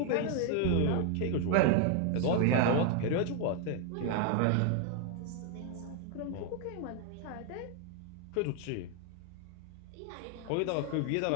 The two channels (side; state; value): both; different; correlation 0.01